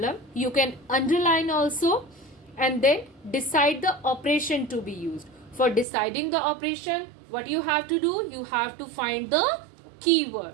You can underline also, and then decide the operation to be used. For deciding the operation, what you have to do? You have to find the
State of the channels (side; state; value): left; drops out; at 5.9 s